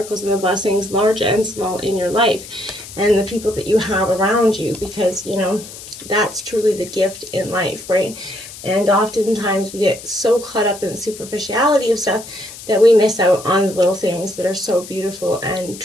and the blessings, large and small, in your life, and the people that you have around you, because, that's truly the gift in life, right? And oftentimes we get so caught up in the superficiality of stuff that we miss out on the little things that are so beautiful and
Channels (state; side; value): noise; left; hiss, 14 dB below the sound